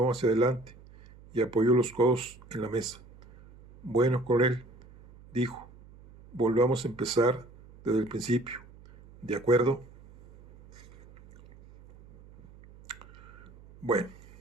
hacia adelante y apoyó los codos en la mesa. Bueno, coronel, dijo, volvamos a empezar desde el principio. ¿De acuerdo? Bueno.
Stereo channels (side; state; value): right; noise; hum, 22 dB below the sound